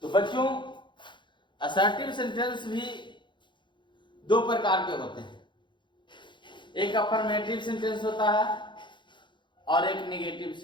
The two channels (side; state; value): right; late; 0.23 ms